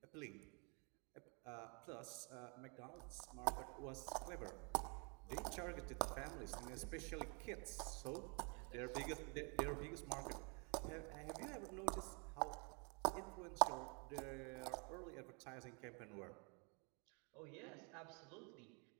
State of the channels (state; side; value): quieter; left; 34.6 dB